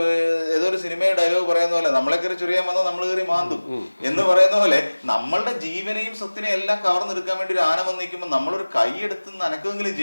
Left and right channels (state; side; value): inverted; both; correlation -1.00